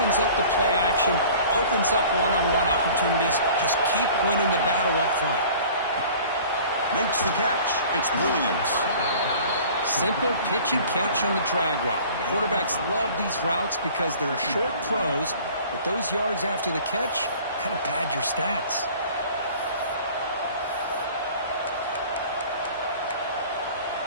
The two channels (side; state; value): both; inverted; correlation -0.47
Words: up the play action, opens up one-on-one opportunities. Just keep winning the battle up front. Makes the catch. It's Williams. Simple pitch and catch on the drag route. Quarterbacks love these routes because they're short throws, but those yards after the catch kind of pad your stats.